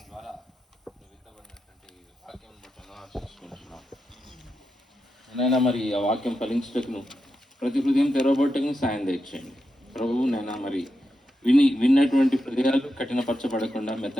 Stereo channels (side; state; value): both; normal; correlation 0.87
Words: ద్వారా నువ్వు విత్తబడినటువంటి వాక్యం బట్టి వందనాలు చూసుకుంటున్నావు. నైనా మరి ఆ వాక్యం ఫలించుటకును ప్రతి హృదయం తెరవబట్టకు సాయం దయచేయండి ప్రభువు. నైనా మరి విన్నటువంటి హృదయాలు కఠినపరచబడకుండా